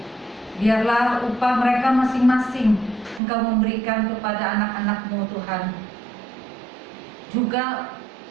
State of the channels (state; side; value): drops out; left; at 3.2 s